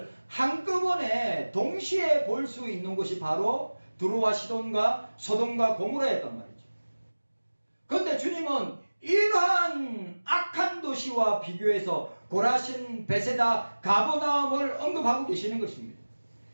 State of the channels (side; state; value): both; inverted; correlation -1.00